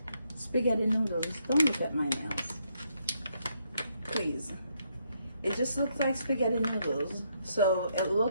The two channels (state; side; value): inverted; both; correlation -0.75